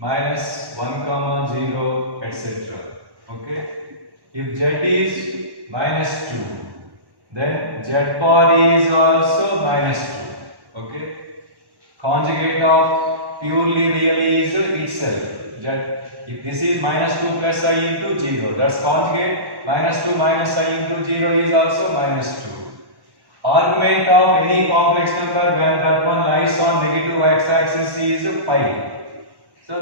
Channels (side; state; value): left; late; 1.1 ms